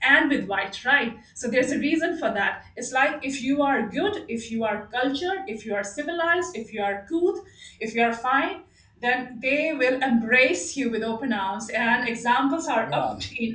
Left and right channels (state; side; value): identical; both; correlation 1.00